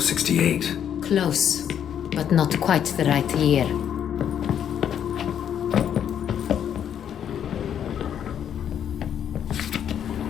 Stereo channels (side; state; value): right; quieter; 9.2 dB